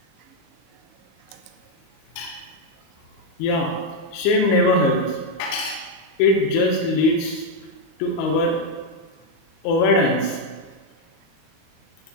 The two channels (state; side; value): late; right; 25 ms